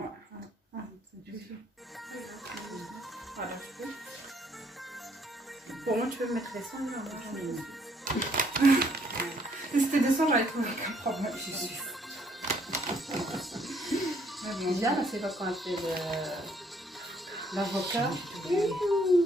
Ouais. C'est juste. Voilà, je peux. Pour moi, tu peux mettre les sons. Si c'était des sons, j'aurais trouvé aucun problème, je suis sûre. Bien, c'est pas quand elle fait l'avocat.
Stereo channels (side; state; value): both; normal; correlation 0.66